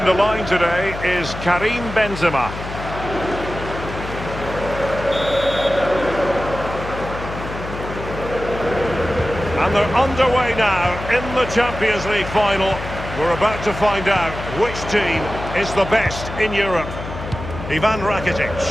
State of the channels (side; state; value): left; noise; hum, 9 dB below the sound